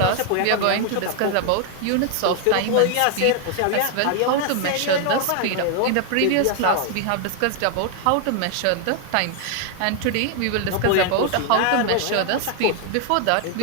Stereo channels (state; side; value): different; both; correlation 0.00